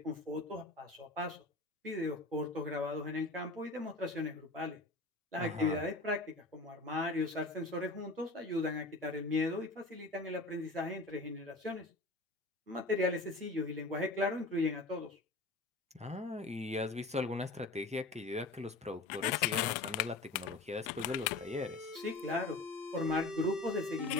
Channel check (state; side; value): quieter; right; 3.1 dB